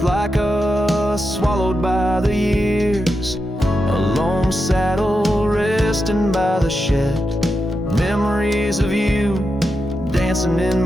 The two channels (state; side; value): normal; both; correlation 0.88